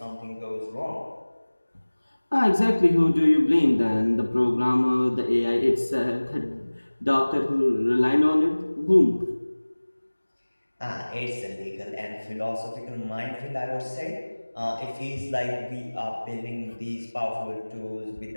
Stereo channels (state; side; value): inverted; both; correlation -1.00